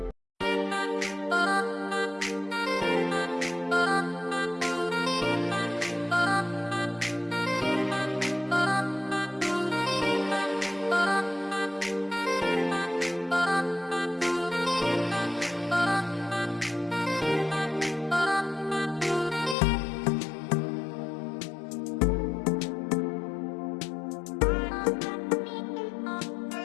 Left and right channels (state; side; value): drops out; right; at 19.6 s